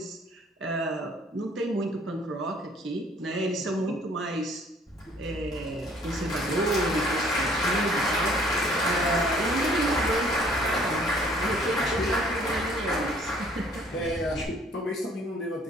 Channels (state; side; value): normal; both; correlation 0.58